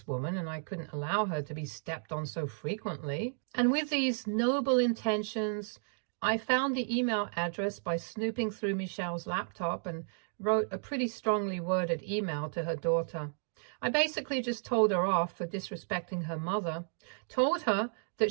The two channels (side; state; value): left; silent; digital silence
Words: woman and I couldn't allow her to be stepped on so frequently. And with these noble intentions, I found the email address by snooping through Michelle's laptop and wrote a pretty strongly worded email to her daughter. I basically just told her off for disrespecting her mother, told her